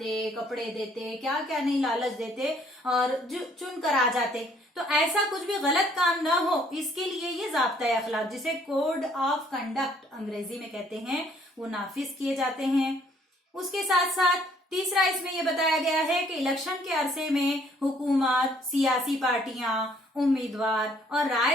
कपड़े देते, क्या क्या नहीं लालच देते और चुन कर आ जाते। तो ऐसा कुछ भी गलत काम ना हो, इसके लिए ये ज़ाब्ता अखलाक, जिसे कोड ऑफ कंडक्ट अंग्रेजी में कहते हैं, वो नाफिज किए जाते हैं। उसके साथ साथ तीसरा इसमें यह बताया गया है कि इलेक्शन के अरसे में हुकूमत, सियासी पार्टियां, उम्मीदवार और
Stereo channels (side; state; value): both; normal; correlation 0.63